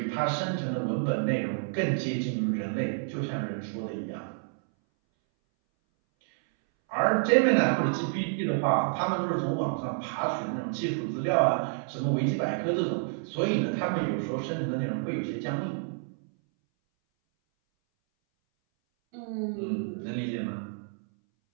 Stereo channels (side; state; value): left; silent; 59 dB below the other